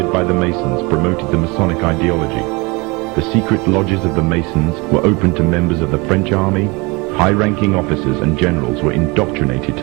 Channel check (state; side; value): quieter; left; 26.7 dB